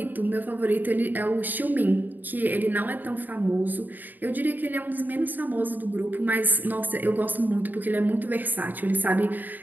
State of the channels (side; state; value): left; late; 0.087 ms